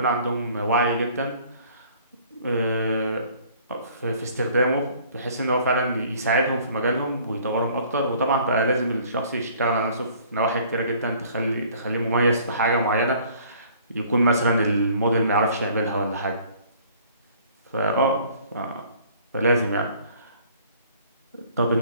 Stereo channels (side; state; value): both; inverted; correlation -0.55